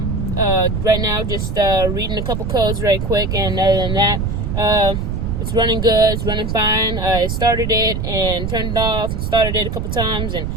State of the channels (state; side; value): noise; right; rumble, 2 dB below the sound